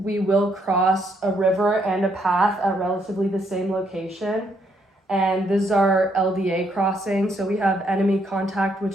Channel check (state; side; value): normal; both; correlation 0.73